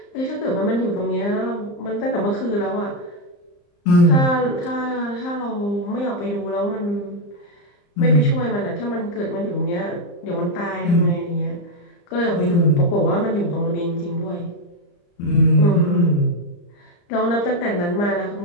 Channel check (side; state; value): right; late; 34 ms